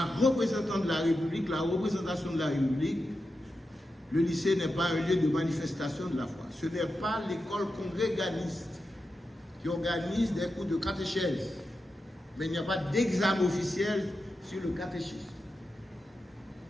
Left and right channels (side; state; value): both; normal; correlation 0.89